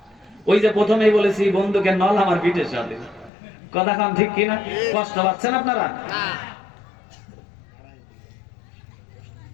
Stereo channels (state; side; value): drops out; right; at 3.3 s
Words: ওই যে প্রথমেই বলেছি বন্ধুকে নল আমার পিঠের সাথে। কথা কম ঠিক কি না? কষ্ট পাচ্ছেন আপনারা?